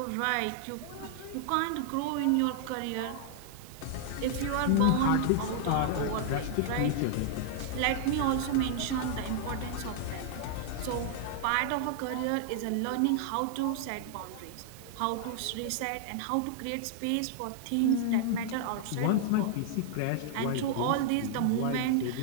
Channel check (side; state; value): both; different; correlation -0.01